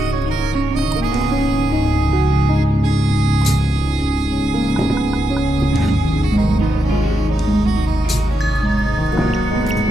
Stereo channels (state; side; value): normal; both; correlation 0.84